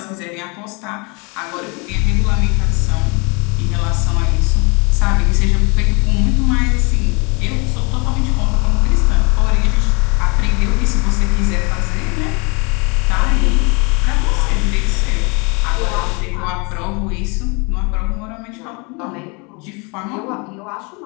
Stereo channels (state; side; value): quieter; right; 30.5 dB